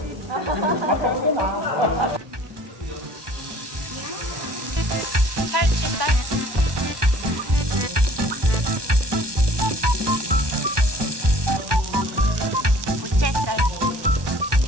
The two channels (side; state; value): left; late; 1.2 ms